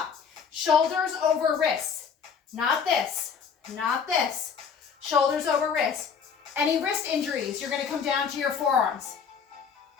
Shoulders over wrists. Not this, not this. Shoulders over wrist. Any wrist injuries, you're going to come down to your forearms.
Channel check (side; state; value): right; quieter; 6.6 dB